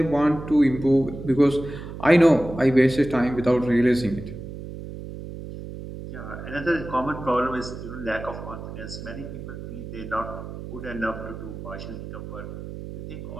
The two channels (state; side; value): noise; right; hum, 10 dB below the sound